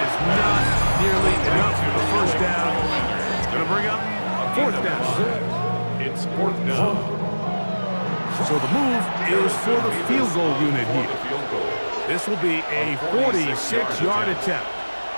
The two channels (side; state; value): both; inverted; correlation -1.00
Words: not nearly enough for the first down. It's going to bring up fourth down. It's fourth down. So the move is for the field goal unit here. This will be a 46-yard attempt.